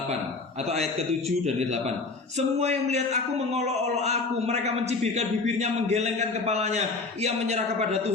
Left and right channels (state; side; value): quieter; right; 3.9 dB